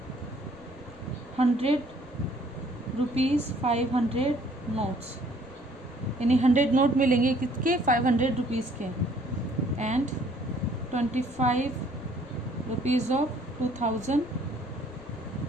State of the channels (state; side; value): noise; left; rumble, 24 dB below the sound